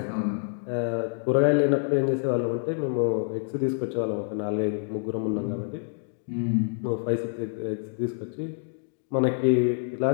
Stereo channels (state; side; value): silent; right; digital silence